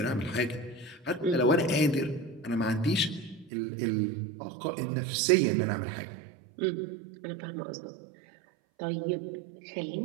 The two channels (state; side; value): drops out; left; at 3.5 s